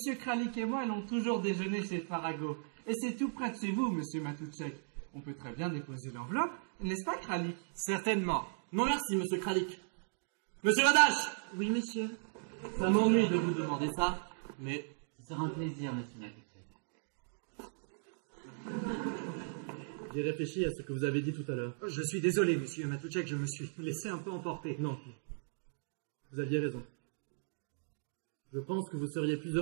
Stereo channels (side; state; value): left; silent; digital silence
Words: Kralik et moi allons toujours déjeuner chez Farago. Et c'est tout près de chez vous, monsieur Matoutchek. On peut très bien déposer l'enveloppe, n'est-ce pas, Kralik? Certainement. Non merci, monsieur Kralik. Monsieur Radache! Oui, monsieur. Ça m'ennuie de vous demander ça, mais... Ce sera un plaisir, monsieur Matoutchek. J'ai réfléchi à ce que vous avez dit tout à l'heure. Je suis désolé, monsieur Matoutchek, je me suis laissé un peu emporter. Non. Vous aviez raison. Je pense que vous seriez plus